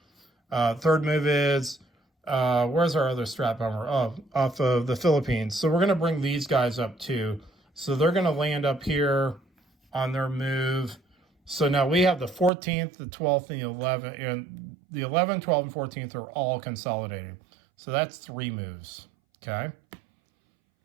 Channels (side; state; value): left; drops out; at 12.5 s